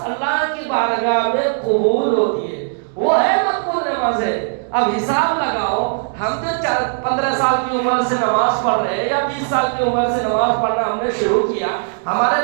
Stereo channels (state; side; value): silent; left; digital silence